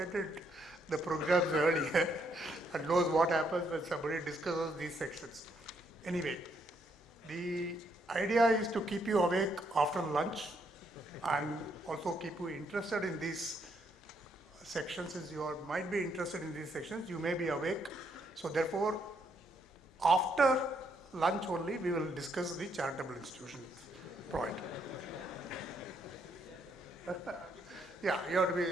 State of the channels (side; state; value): both; normal; correlation 0.74